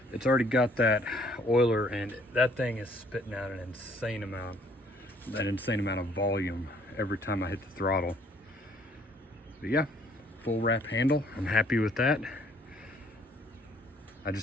It's already got that oiler, and that thing is spitting out an insane amount of volume every time I hit the throttle. But yeah, full wrap handle. I'm happy with that. I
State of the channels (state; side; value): normal; both; correlation 0.61